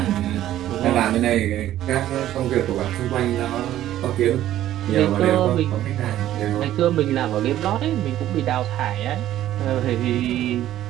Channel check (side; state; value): left; quieter; 12.9 dB